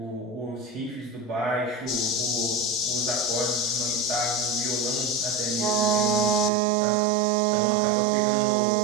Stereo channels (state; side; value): drops out; left; at 6.5 s